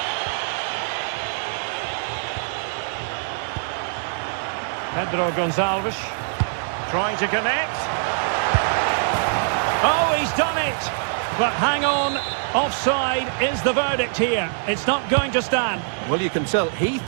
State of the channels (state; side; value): silent; left; digital silence